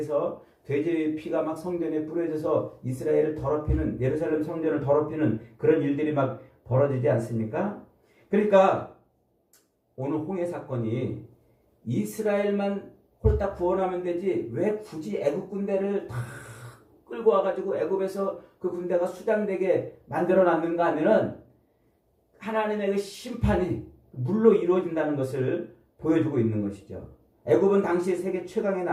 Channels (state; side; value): identical; both; correlation 1.00